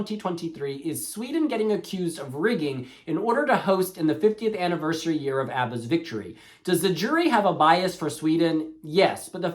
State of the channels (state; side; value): identical; both; correlation 1.00